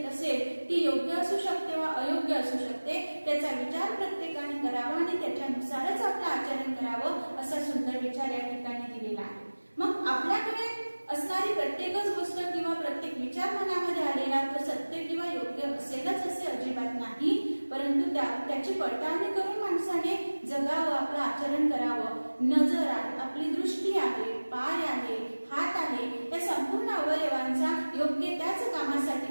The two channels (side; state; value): both; inverted; correlation -1.00